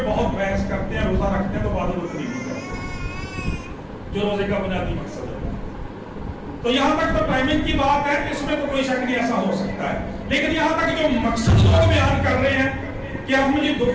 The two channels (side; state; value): both; identical; correlation 1.00